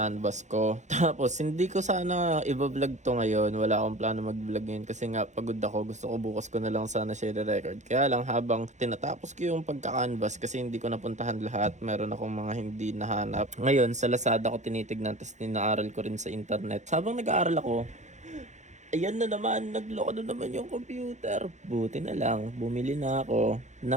ko. Tapos, hindi ko sana i-vlog to ngayon. Wala akong plano mag-vlog ngayon. Kasi nga, pagod ako. Gusto ko bukas ko na lang sana share record. Kaya lang, habang tinatapos ko yung pagka-canvas, kasi hindi ko napuntahan lahat. Meron akong mga hindi nahanap. Ngayon, sa Lazada ko tinitignan. Tapos, ninaaral ko rin sa internet. Habang nag-aaral ako, ayan na naman, nagloko na naman yung computer. Buti na lang, bumili na ako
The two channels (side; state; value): left; late; 0.34 ms